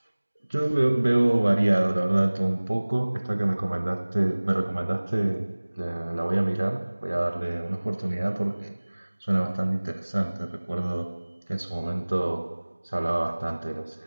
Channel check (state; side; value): inverted; both; correlation -1.00